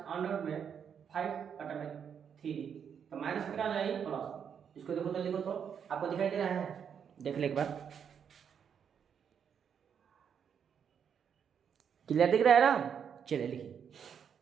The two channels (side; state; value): left; quieter; 7.6 dB